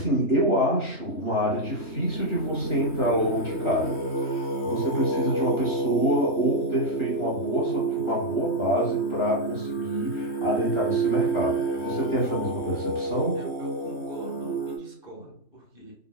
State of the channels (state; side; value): late; right; 3.2 ms